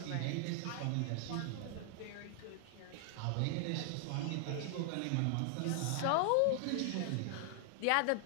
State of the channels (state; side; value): different; both; correlation 0.00